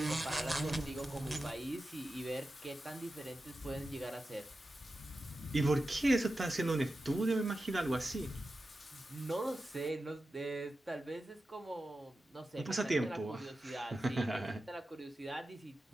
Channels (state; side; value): normal; both; correlation 0.92